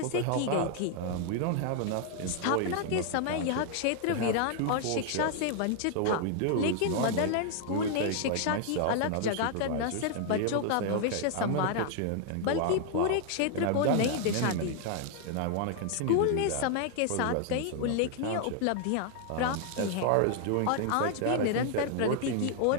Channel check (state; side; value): different; both; correlation 0.00